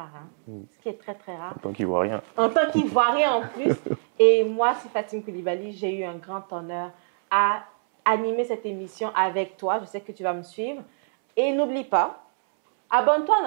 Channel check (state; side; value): silent; left; 62 dB below the other